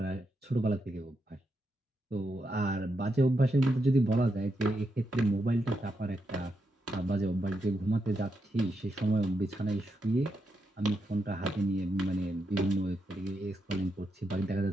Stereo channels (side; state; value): both; normal; correlation 0.83